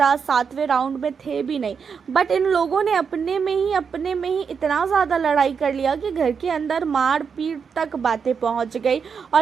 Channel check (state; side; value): quieter; left; 6.3 dB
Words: 7वें राउंड में थे भी नहीं, बट इन लोगों ने अपने में ही इतना ज़्यादा लड़ाई कर लिया कि घर के अंदर मार पीट तक बातें पहुँच गई